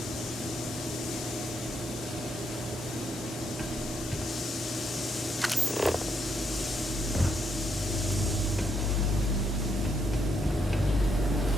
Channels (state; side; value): normal; both; correlation 0.76